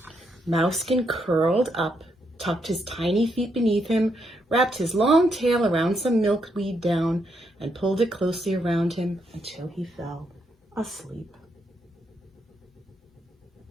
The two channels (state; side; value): normal; both; correlation 0.78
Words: Mousekin curled up, tucked his tiny feet beneath him, wrapped his long tail around some milkweed down, and pulled it closely around him until he fell asleep.